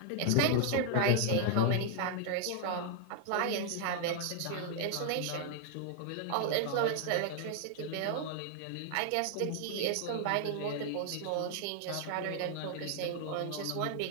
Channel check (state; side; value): different; both; correlation 0.00